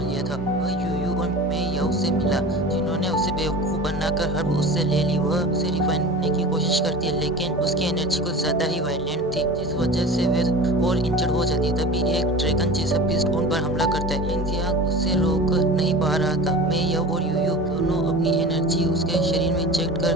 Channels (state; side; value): normal; both; correlation 0.35